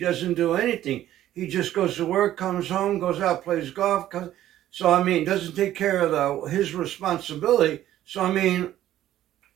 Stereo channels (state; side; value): quieter; left; 12.9 dB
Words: do anything. He just goes to work, comes home, goes out, plays golf. So I mean, doesn't take care of his responsibility. So I mean,